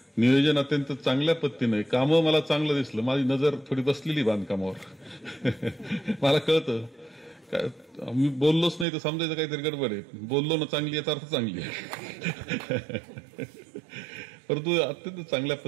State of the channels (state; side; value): drops out; left; at 8.8 s